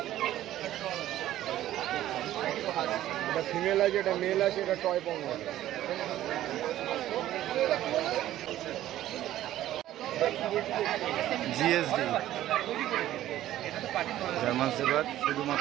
এটা ফিমেল আছে, এটা মেল আছে, এটা টয় পং আছে। জিএসডি জার্মান শেফার্ড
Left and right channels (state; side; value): quieter; left; 13.5 dB